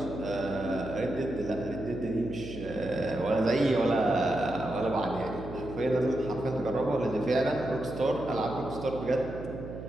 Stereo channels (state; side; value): noise; right; hum, 10 dB below the sound